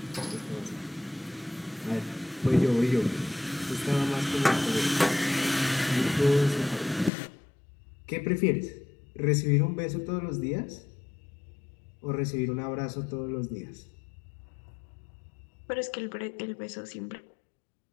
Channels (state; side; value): drops out; right; at 7.1 s